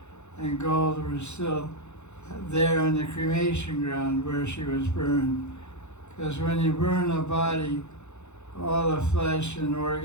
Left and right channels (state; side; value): late; right; 0.82 ms